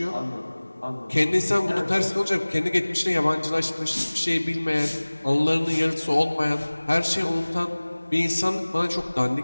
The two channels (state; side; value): inverted; both; correlation -1.00